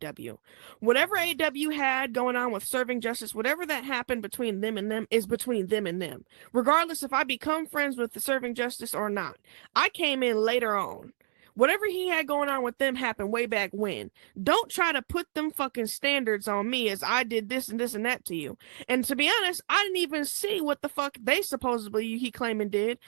Whatever AW had going on with serving justice, whatever that happened between them and them is between them and them. Regardless if I become friends with the serving justice or not. I came in later on. Whatever he had going on with them happened way back when. Don't try to put them fucking standards on me as I did this and this and that to you. And to be honest, I didn't even see what the fuck they supposedly he claiming did,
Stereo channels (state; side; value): silent; left; digital silence